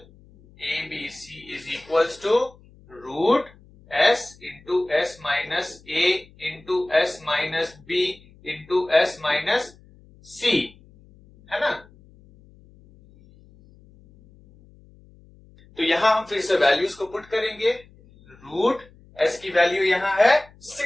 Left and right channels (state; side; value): noise; left; hum, 26 dB below the sound